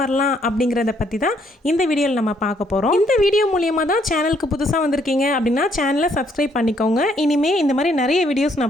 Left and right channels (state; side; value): normal; both; correlation 0.69